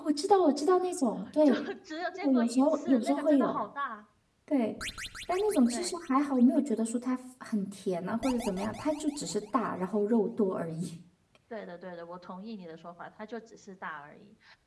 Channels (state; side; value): identical; both; correlation 1.00